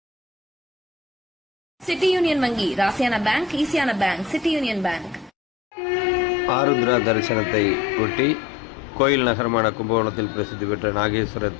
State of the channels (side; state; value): right; drops out; at 5.3 s